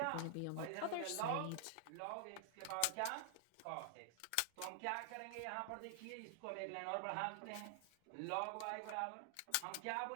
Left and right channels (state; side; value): different; both; correlation 0.00